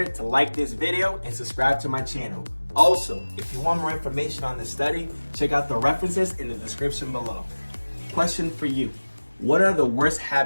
to like this video and subscribe to my channel. Also, if you want more information on this study, check out the references in the description below. Question for you. What are the worst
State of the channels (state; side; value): inverted; both; correlation -1.00